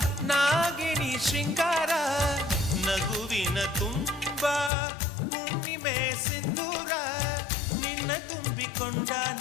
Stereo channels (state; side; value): drops out; right; at 4.7 s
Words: ನಾಗಿಣಿ ಶೃಂಗಾರ, ನಗುವಿನ ತುಂಬ ಹುಣ್ಣಿಮೆ ಸಿಂಧೂರ. ನಿನ್ನ ತುಂಬಿಕೊಂಡ